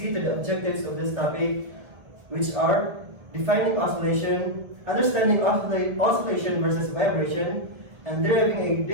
to the objectives of this topic, which are defining oscillation, understanding oscillation versus vibration, and deriving a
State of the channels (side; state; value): left; late; 2.0 ms